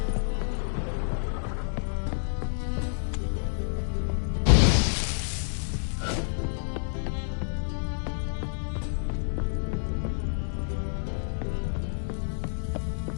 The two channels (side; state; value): right; silent; digital silence